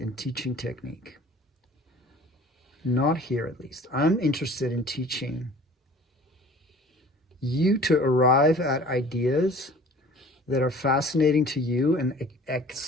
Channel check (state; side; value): normal; both; correlation 0.47